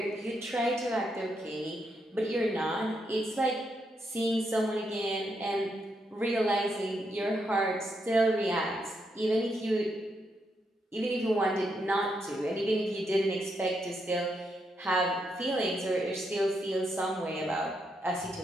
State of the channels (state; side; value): normal; both; correlation 0.80